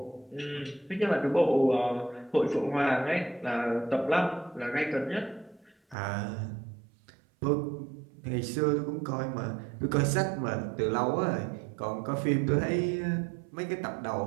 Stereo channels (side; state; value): left; drops out; at 6.0 s